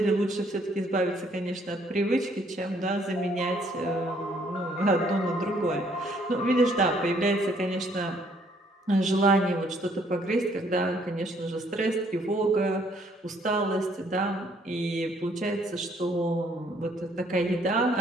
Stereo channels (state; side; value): normal; both; correlation 0.65